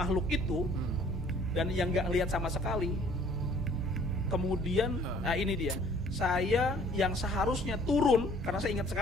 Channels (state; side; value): normal; both; correlation 0.56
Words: itu dan yang nggak lihat sama sekali, kemudian ini dia, saya yang seharusnya turun karena saya ingat